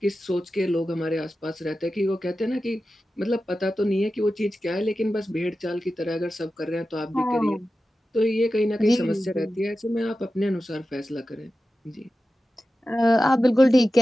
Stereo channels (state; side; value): normal; both; correlation 0.93